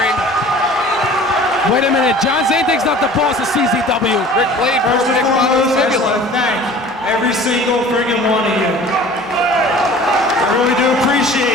Wait a minute, John Zandig's not the boss of CZW. Rick Blade First broke and Nick foremost, Monaghan's I just fibula. want to thank every single friggin' one of you. I really do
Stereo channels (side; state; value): both; normal; correlation 0.45